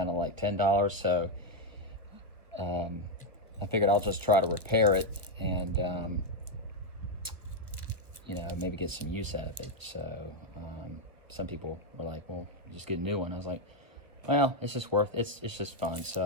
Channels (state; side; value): late; left; 1.1 ms